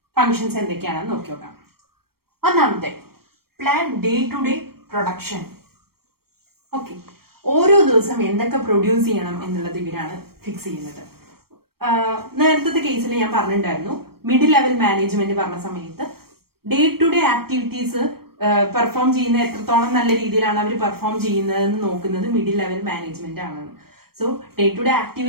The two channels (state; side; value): late; left; 0.94 ms